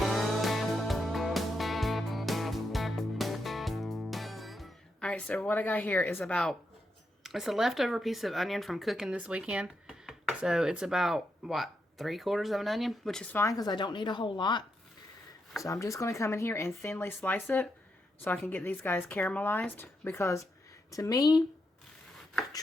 Alright, so what I got here is it's a leftover piece of onion from cooking this weekend. So it's about, 3/4 of an onion, which is fine because I don't need a whole lot. So I'm just going to come in here and thinly slice it so I can get these guys caramelized. Because to me,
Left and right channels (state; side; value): normal; both; correlation 0.83